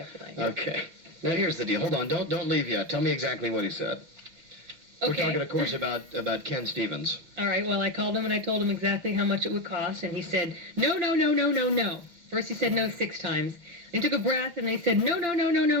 if you like. Okay. Now, here's the deal. Hold on. Don't leave yet. Tell me exactly what he said. Okay. We're talking, of course, about Ken Stevens. All right, well, I called him and I told him exactly how much it would cost, and he said, no, no, no, no, no, no. First he said no 6 times. Then he took a breath, and they said, no, no, no, no, no,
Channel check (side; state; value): left; late; 6.3 ms